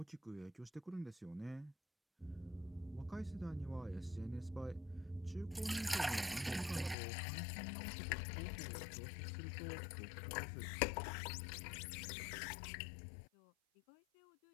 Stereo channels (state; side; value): drops out; right; at 7.0 s